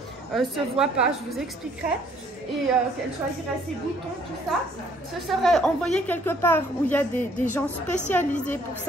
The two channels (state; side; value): normal; both; correlation 0.62